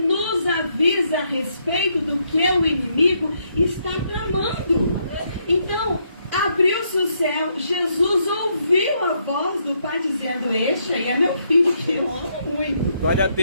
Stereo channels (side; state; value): both; inverted; correlation -0.75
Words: nos avisa a respeito do que o inimigo está tramando. Então, abriu-se o céu, Jesus ouviu a voz do Pai dizendo: este aí é meu filho que eu amo muito. Glória a